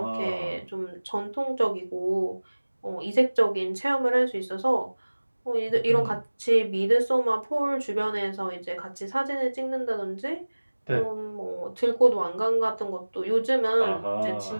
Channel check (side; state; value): both; inverted; correlation -1.00